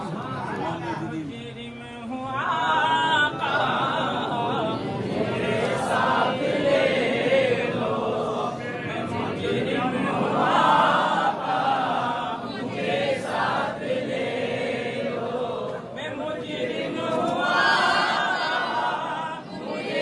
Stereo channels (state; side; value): identical; both; correlation 1.00